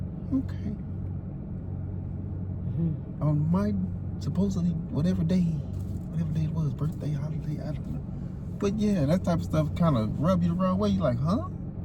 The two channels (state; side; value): identical; both; correlation 1.00